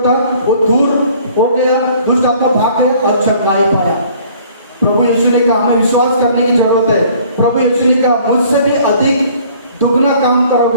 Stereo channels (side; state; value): both; inverted; correlation -0.55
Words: था वो दूर हो गया, दुष्ट आत्मा भाग गए और चंगाई पाया। प्रभु यीशु ने कहा हमें विश्वास करने की जरूरत है। प्रभु यीशु ने कहा मुझसे भी अधिक दुगना काम